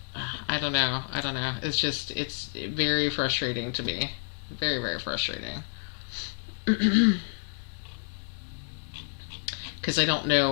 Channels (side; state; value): right; silent; 58 dB below the other